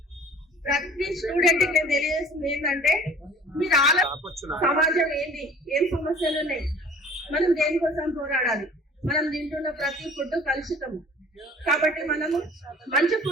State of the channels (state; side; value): normal; both; correlation 0.48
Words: ప్రతి స్టూడెంట్ కి నేను తెలియజేస్తుంది ఏంటంటే, మీరు సమాజం ఏంటి, ఏం సమస్యలు ఉన్నాయి, మనం దేనికోసం పోరాడాలి. మనం తింటున్న ప్రతి ఫుడ్ కలుషితము. కాబట్టి మనము మంచి